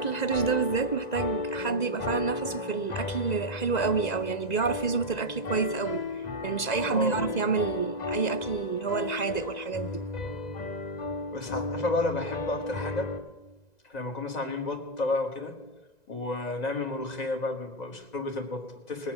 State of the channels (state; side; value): late; right; 2.0 ms